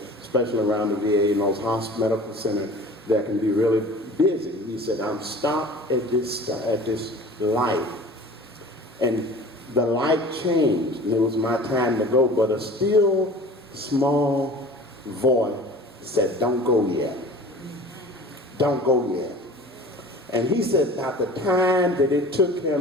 especially around the VA and those medical centers that can be really busy. He said, I'm stopped at this light. And the light changed, and it was my time to go, but a still small voice said, don't go yet. Don't go yet. And he said about the time that it took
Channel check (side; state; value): both; normal; correlation 0.42